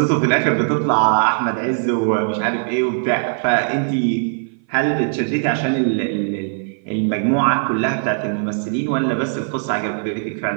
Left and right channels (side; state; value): left; silent; 57 dB below the other